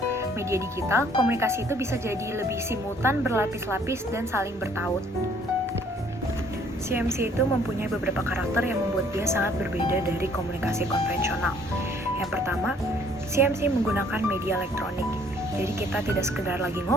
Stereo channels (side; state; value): both; normal; correlation 0.60